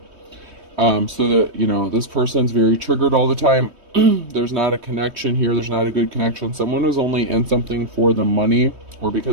So that, you know, this person's very triggered all the time. There's not a connection here. There's not a good connection. Someone was only in something for the money, or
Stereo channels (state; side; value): late; left; 3.2 ms